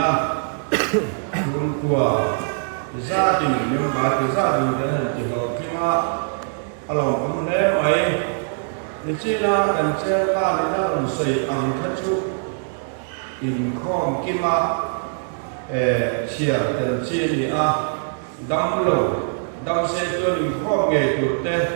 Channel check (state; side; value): silent; left; digital silence